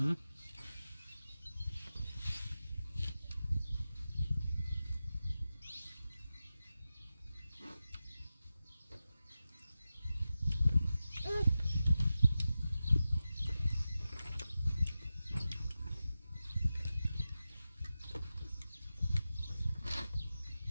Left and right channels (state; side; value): inverted; both; correlation -0.93